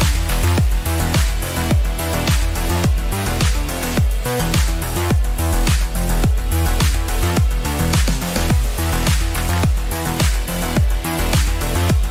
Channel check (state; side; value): identical; both; correlation 1.00